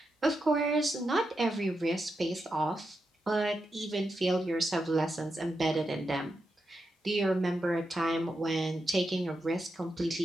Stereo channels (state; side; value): normal; both; correlation 0.86